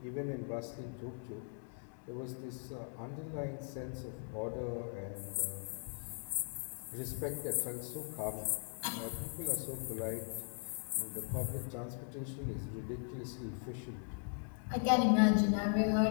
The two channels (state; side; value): silent; right; 52 dB below the other